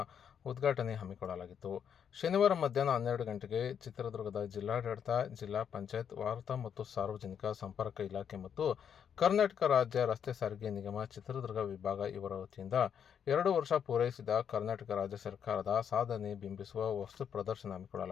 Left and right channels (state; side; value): quieter; right; 8.1 dB